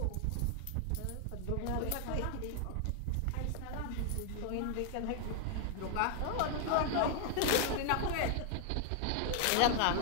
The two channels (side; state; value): both; different; correlation 0.00